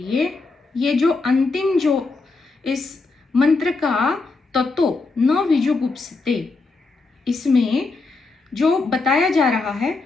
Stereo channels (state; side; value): quieter; right; 3.8 dB